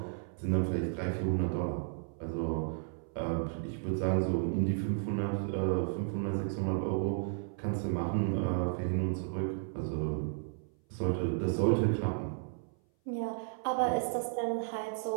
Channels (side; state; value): left; silent; 55 dB below the other